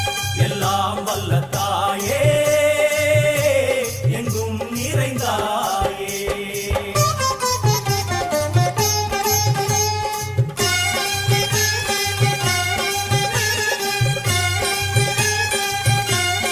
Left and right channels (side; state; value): both; identical; correlation 1.00